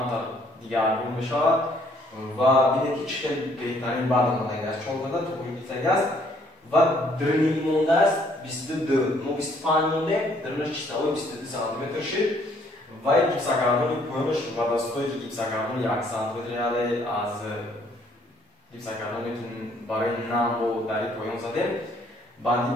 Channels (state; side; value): normal; both; correlation 0.64